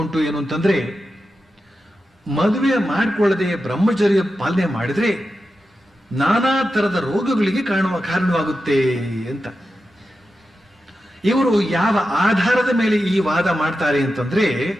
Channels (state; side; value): normal; both; correlation 0.91